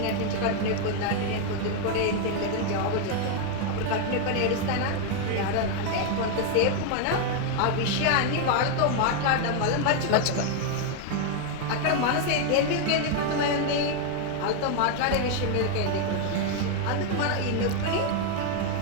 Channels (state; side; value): different; both; correlation 0.01